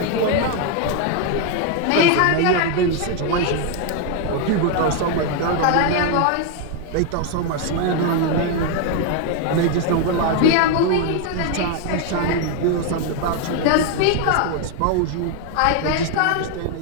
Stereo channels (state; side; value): different; both; correlation 0.01